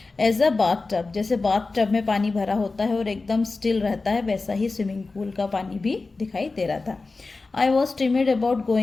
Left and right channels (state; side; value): quieter; right; 3.7 dB